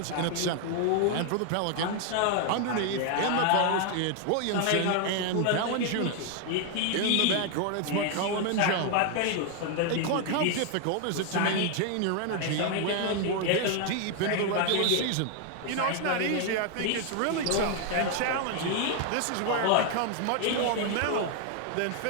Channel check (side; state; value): both; different; correlation 0.00